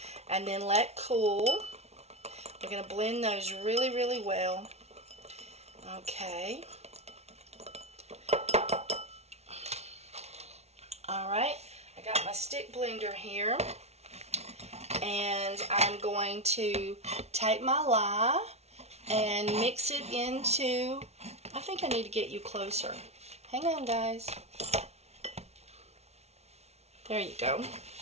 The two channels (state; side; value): late; left; 0.31 ms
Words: and then let cool. We're going to blend those really, really well. Okay. Alright, I got my stick blender here, and I'm going to take my lye and mix it into, I think I need to get you closer. Hang on, guys. There you go.